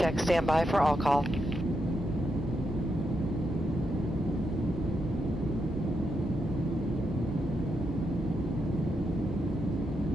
stand by for all call.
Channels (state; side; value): normal; both; correlation 0.82